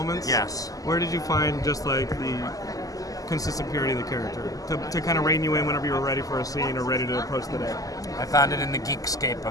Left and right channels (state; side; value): late; right; 0.17 ms